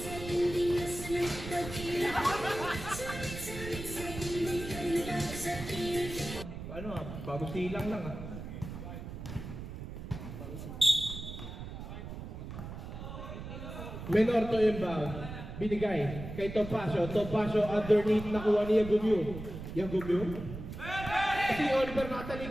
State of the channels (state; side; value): noise; right; rumble, 9 dB below the sound